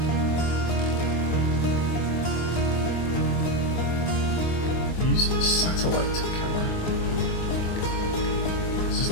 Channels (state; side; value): late; right; 24 ms